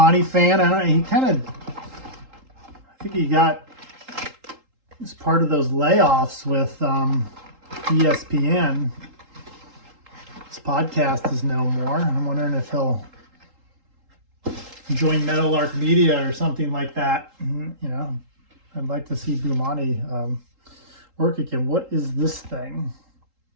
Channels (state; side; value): late; left; 3.8 ms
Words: fan. I don't know, he kind of, I think he got, as part of those layoffs with ESPN. His podcast is no more. I'm wondering if he'll join Meadowlark Media or something like that. You know, I'd like to see Bomani work again. What is this thing?